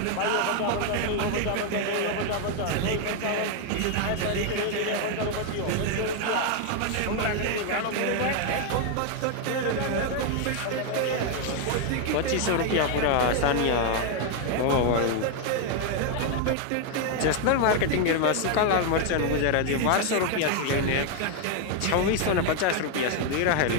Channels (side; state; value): both; different; correlation 0.01